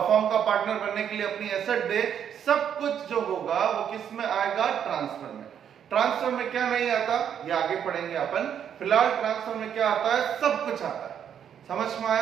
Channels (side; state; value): left; quieter; 8.7 dB